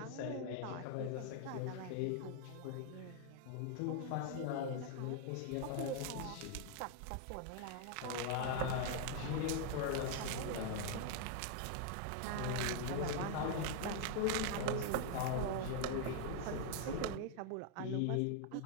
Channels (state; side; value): different; both; correlation 0.00